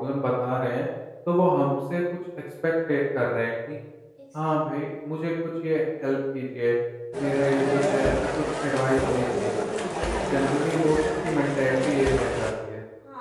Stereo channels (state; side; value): identical; both; correlation 1.00